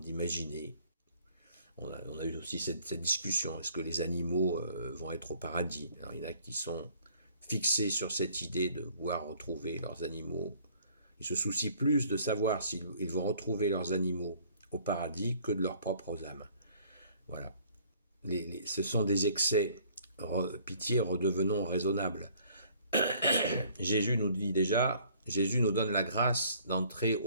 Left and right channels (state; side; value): inverted; both; correlation -0.58